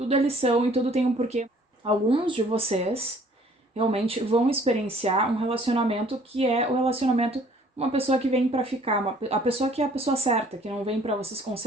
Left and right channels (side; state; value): both; normal; correlation 0.57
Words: é lição e tudo tem um porquê. Alguns de vocês realmente vão experienciar um relacionamento que é o relacionamento uma pessoa que vem pra ficar, a pessoa que é a pessoa certa, que não vem pra vocês